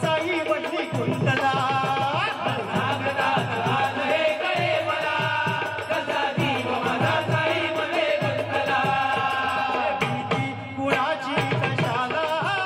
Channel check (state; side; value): identical; both; correlation 1.00